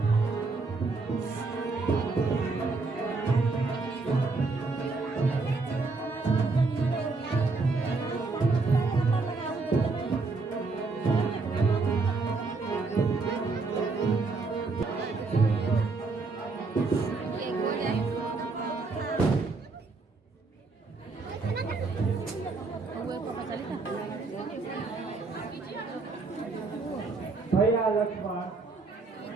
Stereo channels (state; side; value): quieter; left; 3.9 dB